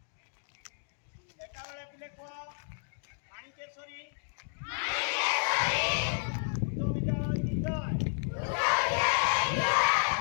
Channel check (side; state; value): right; silent; digital silence